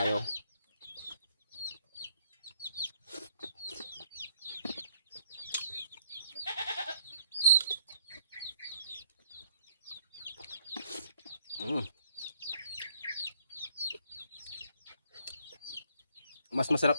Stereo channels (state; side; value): inverted; both; correlation -0.67